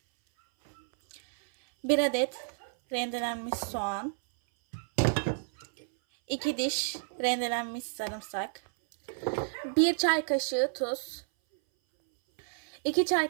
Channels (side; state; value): left; silent; 57 dB below the other